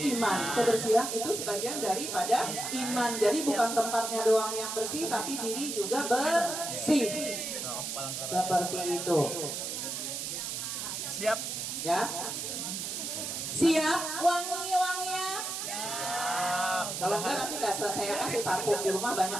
Kebersihan itu sebagian daripada iman. Jadi bukan tempatnya doang yang bersih, tapi diri juga bersih. Nah, palang karaya. Seperti itu. Siap. Ya. Siap wangi-wangian. Siap. Kalau enggak nanti nggak saya kasih parfum di rumah, banyak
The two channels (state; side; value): noise; right; hiss, 4 dB below the sound